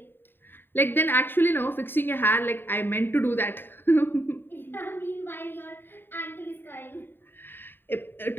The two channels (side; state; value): right; late; 0.099 ms